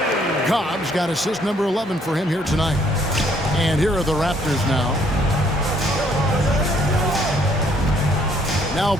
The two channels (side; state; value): both; normal; correlation 0.65